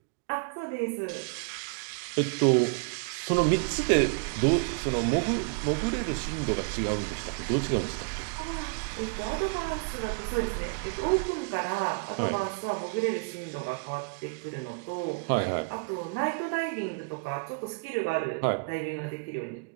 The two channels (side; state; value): left; quieter; 34.4 dB